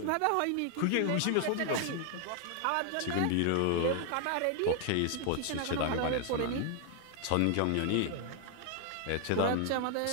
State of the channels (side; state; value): both; different; correlation 0.00